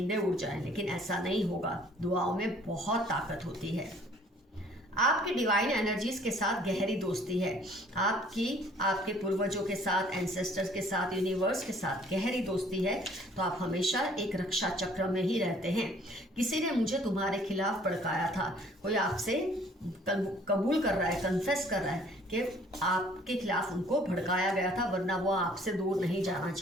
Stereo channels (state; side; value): normal; both; correlation 0.57